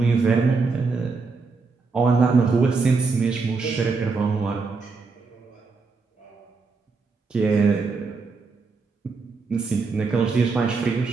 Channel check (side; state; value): left; quieter; 4.4 dB